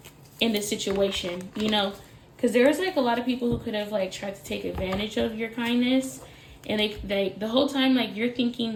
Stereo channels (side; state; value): both; identical; correlation 1.00